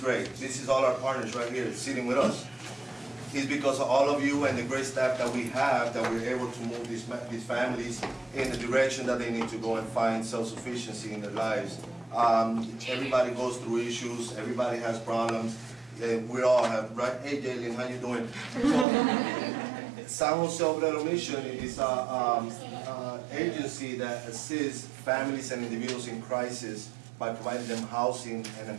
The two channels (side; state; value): left; drops out; at 18.9 s